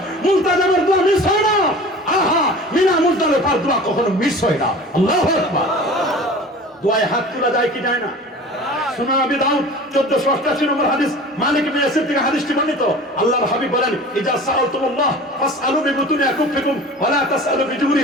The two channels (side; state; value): both; normal; correlation 0.40